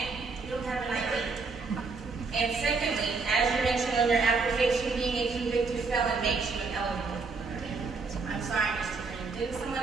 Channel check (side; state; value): left; quieter; 4.3 dB